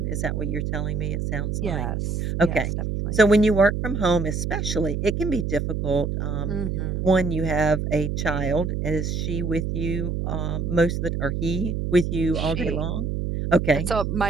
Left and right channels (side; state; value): right; noise; hum, 2 dB below the sound